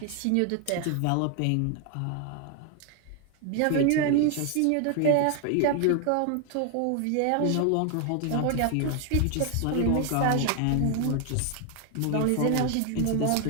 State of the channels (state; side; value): different; both; correlation 0.01